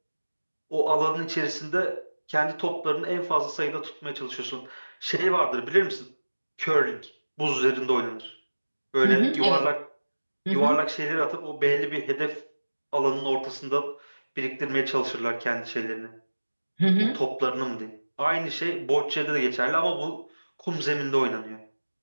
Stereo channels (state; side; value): inverted; both; correlation -1.00